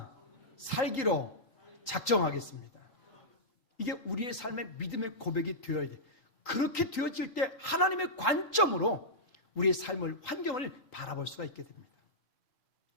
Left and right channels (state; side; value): late; right; 3.9 ms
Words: 살기로 작정하겠습니다. 이게 우리의 삶의 믿음의 고백이 되어야 돼. 그렇게 되어질 때 하나님의 관점으로 우리의 삶을, 환경을 바라볼 수가 있게 됩니다.